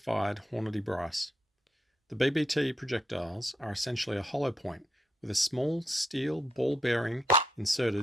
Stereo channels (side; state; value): both; normal; correlation 0.80